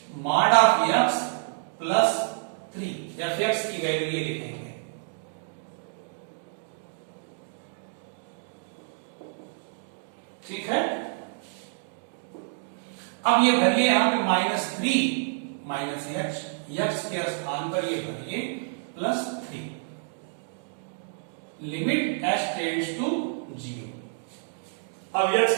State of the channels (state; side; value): silent; left; digital silence